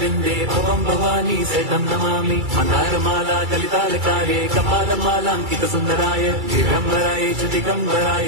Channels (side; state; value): left; late; 2.3 ms